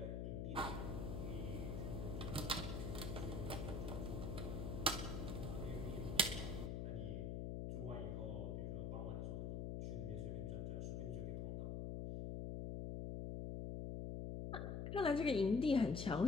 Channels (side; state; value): left; noise; hum, 2 dB below the sound